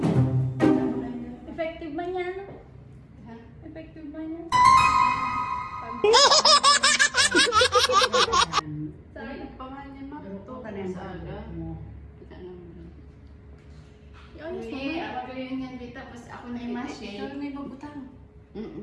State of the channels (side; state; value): both; identical; correlation 1.00